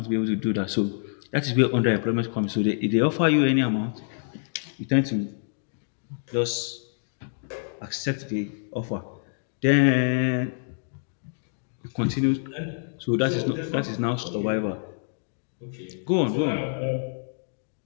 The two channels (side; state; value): right; silent; digital silence